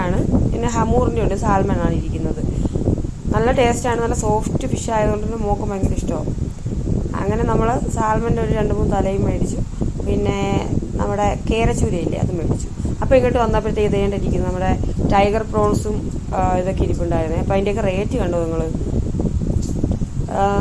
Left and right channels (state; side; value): identical; both; correlation 1.00